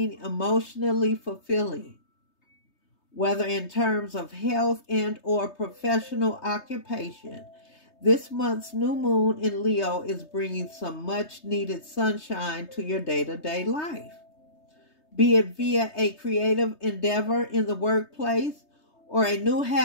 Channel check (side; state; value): right; late; 3.3 ms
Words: emotionally fulfilling? Whether in terms of health and or professional occupation, this month's new moon in Leo is bringing some much needed sunshine to your day-to-day life. Be it via a creative endeavor in the workplace or a new